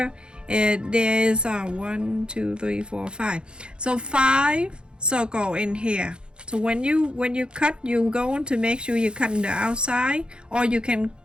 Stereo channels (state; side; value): late; left; 0.051 ms